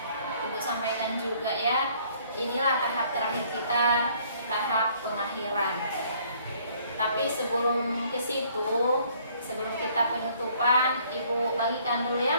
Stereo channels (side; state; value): both; inverted; correlation -0.61